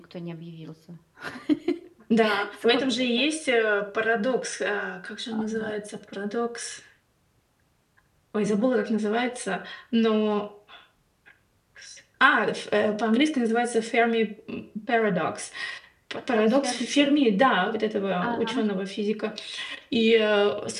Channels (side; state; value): both; identical; correlation 1.00